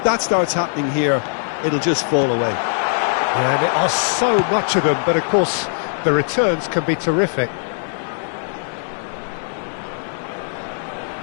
that starts happening here, it'll just fall away. Yeah, and there are so much of them, but, of course, the returns can be terrific.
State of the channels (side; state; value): right; silent; digital silence